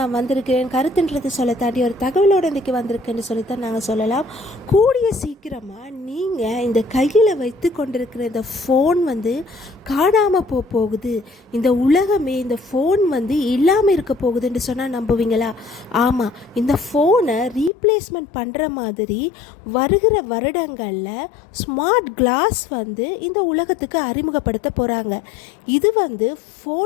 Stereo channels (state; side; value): drops out; right; at 17.7 s